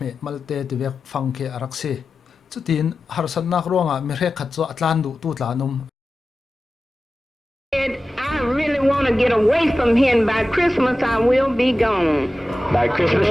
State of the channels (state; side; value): normal; both; correlation 0.94